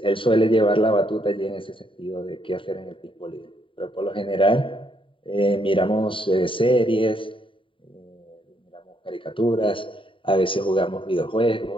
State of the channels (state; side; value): late; right; 0.25 ms